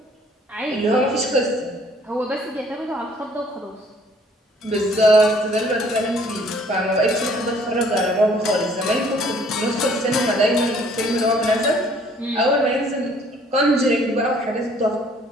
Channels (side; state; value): both; normal; correlation 0.59